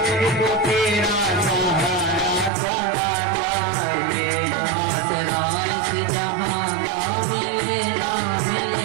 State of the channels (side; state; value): left; drops out; at 2.5 s